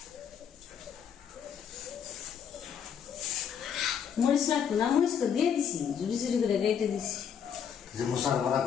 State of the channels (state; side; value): quieter; right; 7.9 dB